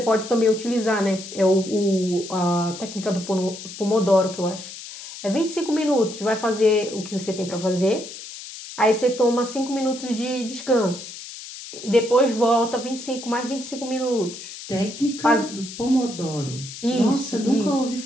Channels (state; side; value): noise; left; hiss, 12 dB below the sound